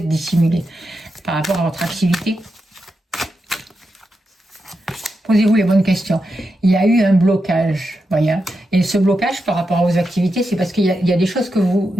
dissimulées par rapport à votre activité. Posez-vous les bonnes questions. Il y a eu un blocage, voyez. Et ce blocage par rapport à vos activités, c'est parce qu'il y a des choses que vous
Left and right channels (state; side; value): normal; both; correlation 0.87